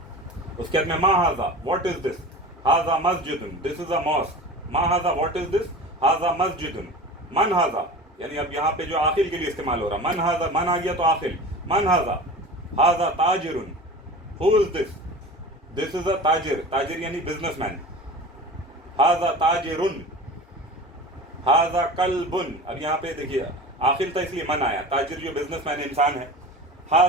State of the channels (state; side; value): normal; both; correlation 0.35